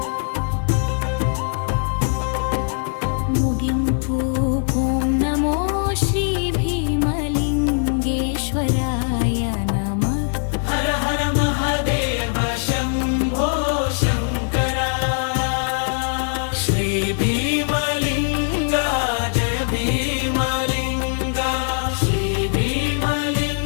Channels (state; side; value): silent; right; 65 dB below the other